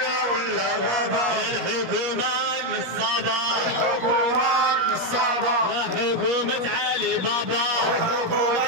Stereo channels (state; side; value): late; left; 17 ms